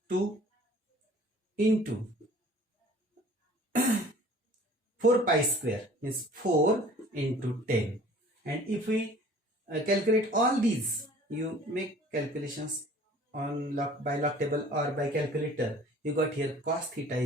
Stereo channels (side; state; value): both; normal; correlation 0.50